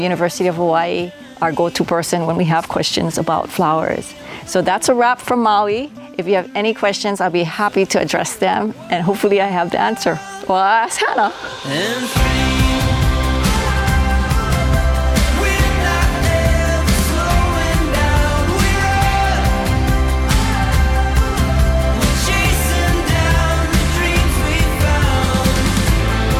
of Hawaii, our go-to person when we have questions about flowers. So that's a wrap from Maui. If you have any questions, I'll be happy to address them, and hopefully I have the answer. Well, I'll ask Hannah.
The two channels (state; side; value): identical; both; correlation 1.00